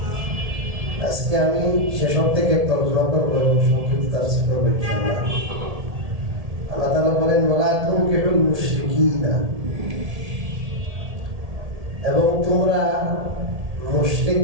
আজকে আমি শেষক থেকে তর্জমা করবো এবং সংক্ষিপ্ত তাফসীর করবো ইনশাআল্লাহ। আল্লাহ তাআলা বলেন ওয়ালা তুনকিহুল মুশরিকিনা, এবং তোমরা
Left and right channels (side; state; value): left; late; 1.8 ms